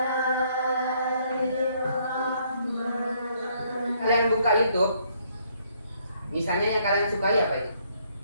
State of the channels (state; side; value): inverted; both; correlation -0.68